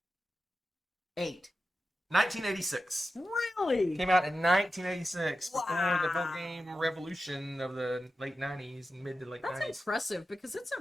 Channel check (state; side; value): normal; both; correlation 0.92